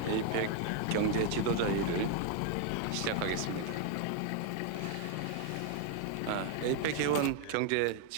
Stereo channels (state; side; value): different; both; correlation 0.01